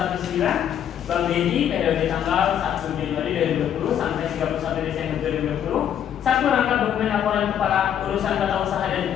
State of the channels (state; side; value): quieter; right; 9.6 dB